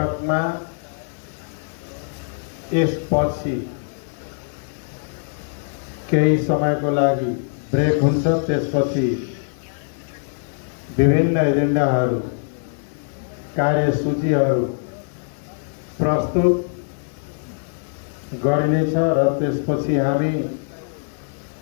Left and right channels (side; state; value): right; silent; digital silence